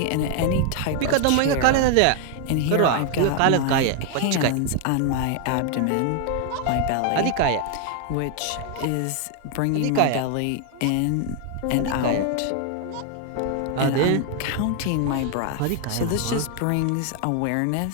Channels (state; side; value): different; both; correlation 0.00